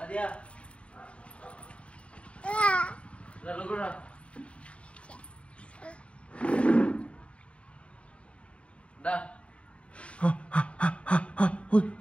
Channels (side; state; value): right; late; 0.061 ms